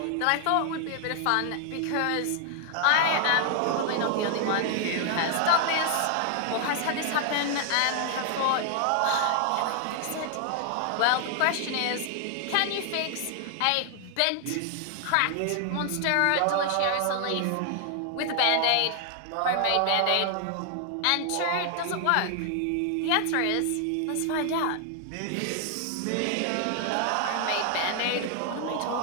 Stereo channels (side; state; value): both; different; correlation 0.00